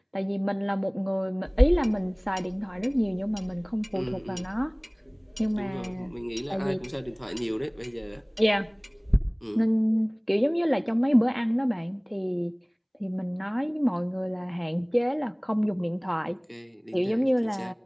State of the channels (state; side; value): identical; both; correlation 1.00